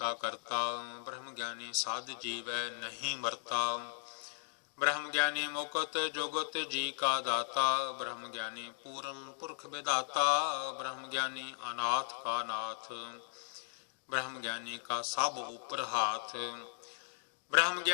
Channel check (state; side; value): silent; right; digital silence